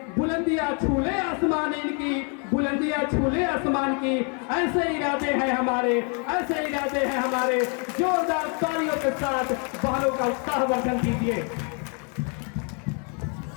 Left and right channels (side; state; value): right; quieter; 38.7 dB